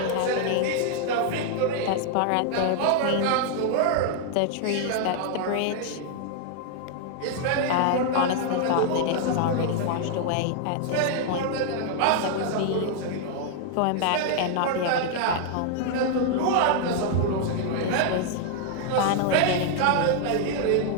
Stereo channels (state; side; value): different; both; correlation 0.00